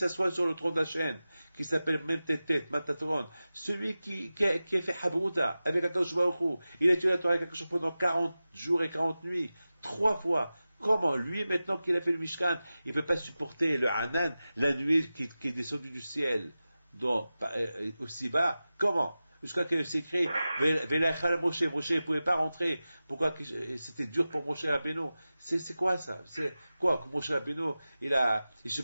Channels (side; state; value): both; inverted; correlation -0.95